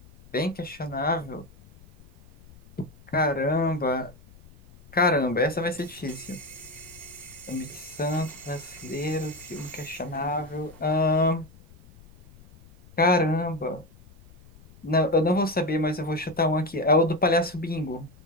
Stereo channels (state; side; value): noise; left; rumble, 24 dB below the sound